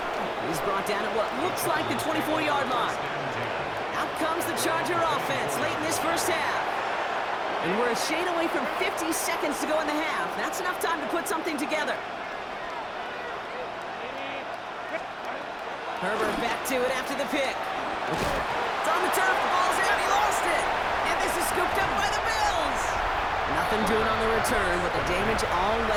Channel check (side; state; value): both; identical; correlation 1.00